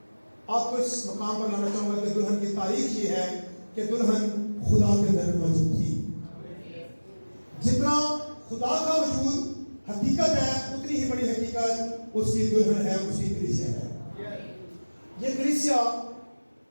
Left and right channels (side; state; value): both; inverted; correlation -1.00